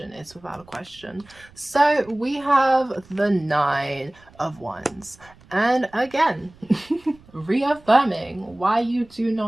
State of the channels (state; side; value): noise; right; rumble, 26 dB below the sound